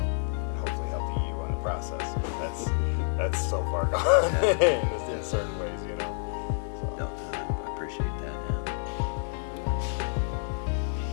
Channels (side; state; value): right; silent; 55 dB below the other